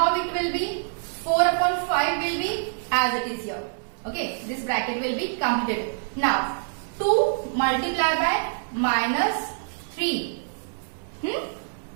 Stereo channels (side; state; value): left; silent; digital silence